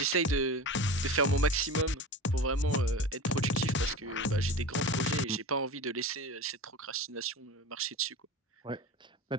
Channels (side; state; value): both; normal; correlation 0.31